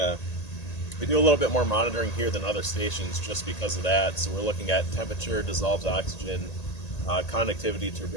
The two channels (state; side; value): late; right; 1.8 ms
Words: a little bit more monitoring here than other stations just because of that. So we're looking at temperature, dissolved oxygen, conductivity,